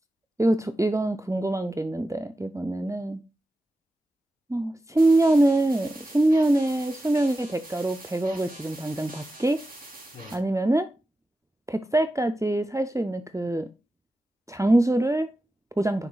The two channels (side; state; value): both; normal; correlation 0.92